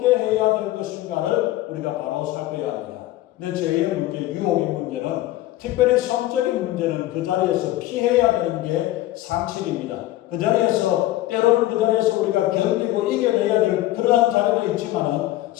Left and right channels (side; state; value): right; quieter; 15.7 dB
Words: 해야 될 것인가를 우리가 바로 살펴야 합니다. 근데 죄의 문제, 유혹의 문제는 특별히 성적인 문제는 그 자리에서 피해야 되는 게 상식입니다. 그 자리에서 때로는 그 자리에서 우리가 견디고 이겨내야 될 그러한 자리도 있지만